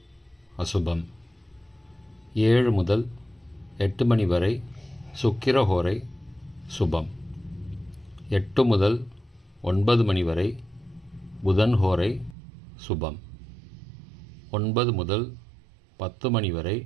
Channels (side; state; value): left; drops out; at 12.4 s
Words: அசுபம். 7 முதல் 8 மணி வரை சுக்கிர ஹோரை சுபம். 8 முதல் 9 மணி வரை புதன் ஹோரை சுபம். 9 முதல் 10 மணி வரை